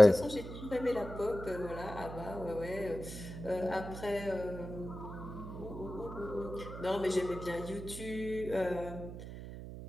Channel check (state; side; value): noise; right; hum, 10 dB below the sound